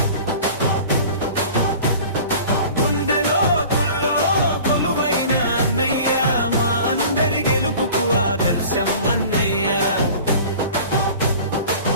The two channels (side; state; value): both; inverted; correlation -0.42